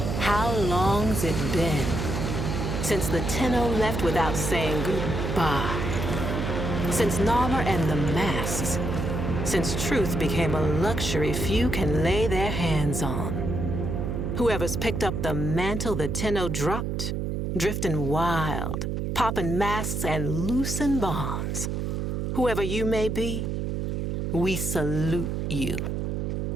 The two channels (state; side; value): noise; right; hum, 1 dB below the sound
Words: How long's it been since the Tenno left without saying goodbye? Since Narmer and the masks? Since truth became a luxury few can lay their hands on? Whoever's picked up the mantle the Tenno dropped, drifting wild, popping masks and loosing bonds. Whoever you may be, we salute you,